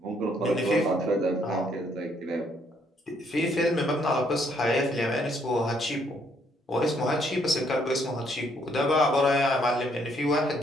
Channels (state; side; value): normal; both; correlation 0.69